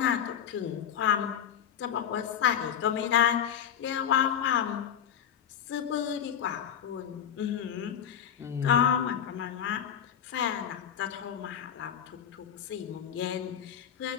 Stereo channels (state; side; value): quieter; right; 9.1 dB